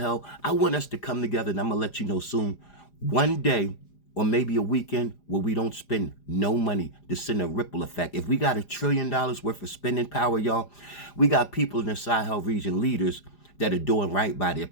I want us to come together, and I'm going to let you know soon, one day or maybe a weekend where we don't spend no money to send a ripple effect. If we got $1 trillion worth of spending power, y'all, we got people in the Sahel region, leaders, that are doing right by their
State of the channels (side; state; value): right; late; 4.9 ms